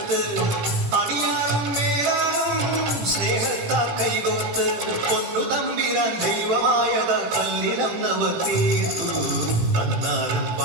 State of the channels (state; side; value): late; left; 17 ms